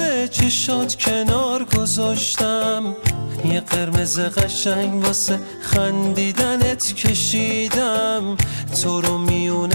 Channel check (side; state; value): both; inverted; correlation -1.00